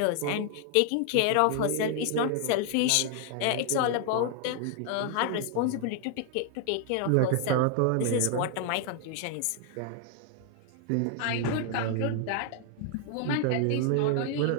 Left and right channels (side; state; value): both; different; correlation 0.00